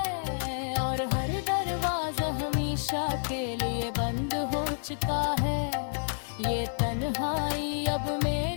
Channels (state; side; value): silent; right; digital silence